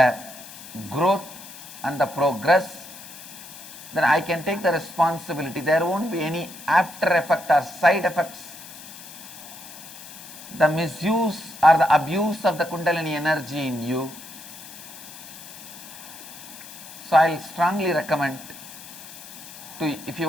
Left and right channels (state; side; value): noise; left; hiss, 15 dB below the sound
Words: growth and the progress. Then I can take the responsibility. There won't be any after effect or side effects. The misuse or the abuse of the Kundalini energy in you. So I'll strongly recommend if